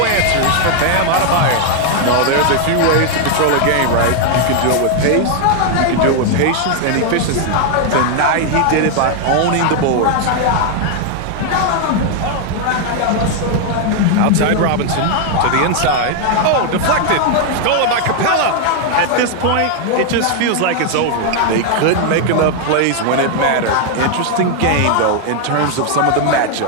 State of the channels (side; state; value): both; different; correlation 0.00